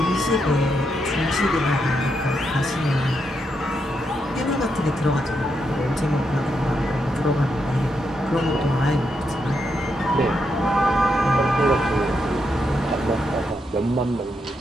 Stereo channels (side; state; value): both; normal; correlation 0.81